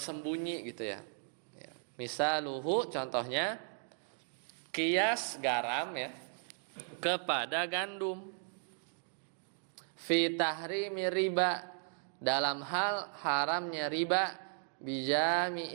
gitu ya. Misaluhu contohnya kias garam ya kepada gandum. Fi tahrimi riba dalam hal haramnya riba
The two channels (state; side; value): silent; left; digital silence